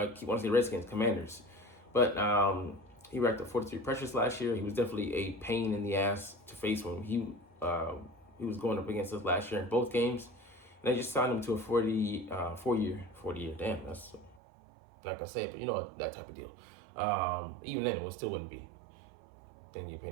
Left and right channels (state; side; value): drops out; left; at 14.4 s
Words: keep wanting to say Redskins, Commanders, but he racked up 43 pressures last year. He was definitely a pain in the ass to face when he was going up against us last year in both games. And they just signed him to a 40-year. Damn, that's not gonna say it, but that type of deal. Even then, it still wouldn't be. Then you pay